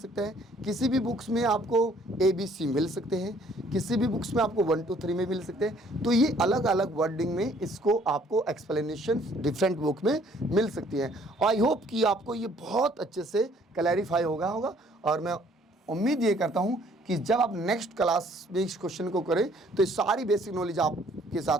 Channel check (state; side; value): normal; both; correlation 0.60